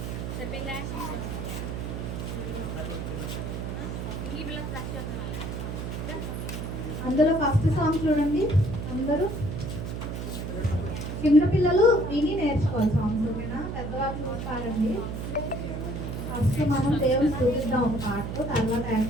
చెప్పిందా. అందులో ఫస్ట్ సాంగ్ చూడండి. అందరూ చిన్న పిల్లలు విని నేర్చుకోవాలి సాంగ్స్, ఓకేనా? పెద్దవాళ్ళు చూసి పాడండి. ఫస్ట్ మనం దేవుని చూపిద్దాం ఒక పాటతో, తర్వాత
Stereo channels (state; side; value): noise; right; hum, 5 dB below the sound